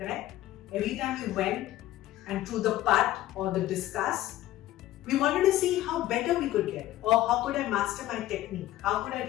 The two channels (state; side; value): quieter; right; 14.7 dB